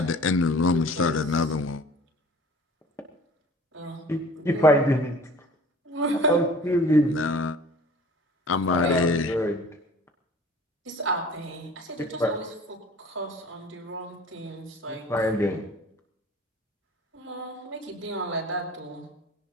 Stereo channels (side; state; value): both; normal; correlation 0.47